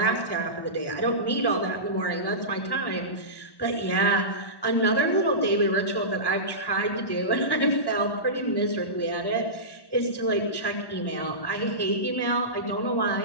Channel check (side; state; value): right; late; 1.1 ms